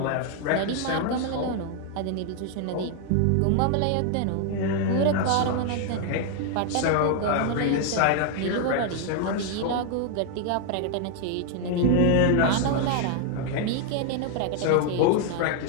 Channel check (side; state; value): both; different; correlation 0.00